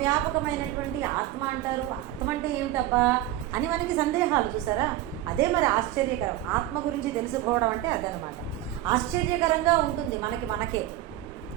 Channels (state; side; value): quieter; left; 14.3 dB